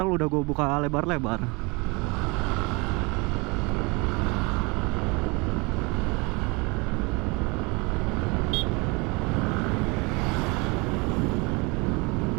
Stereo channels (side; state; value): left; quieter; 27.5 dB